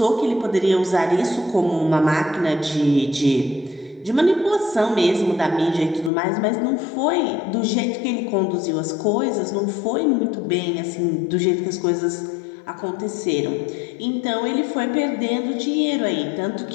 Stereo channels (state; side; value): drops out; right; at 6.1 s